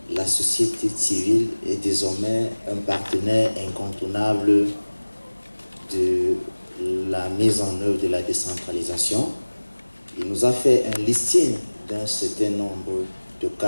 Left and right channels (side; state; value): both; inverted; correlation -1.00